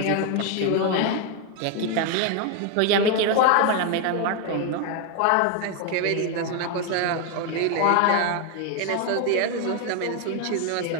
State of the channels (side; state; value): both; different; correlation 0.01